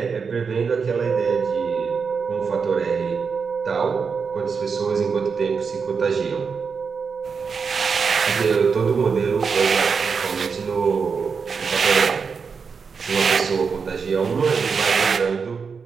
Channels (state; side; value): quieter; left; 5.6 dB